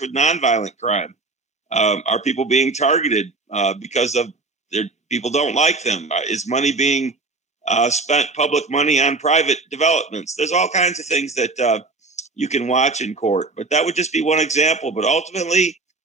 with nonviolent crime? Are people being targeted because of people don't like them? Is money being spent, public money, on private developments? There's all kinds of things that you can watch in court. But that would just be one example. But ultimately,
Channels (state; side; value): quieter; left; 3.5 dB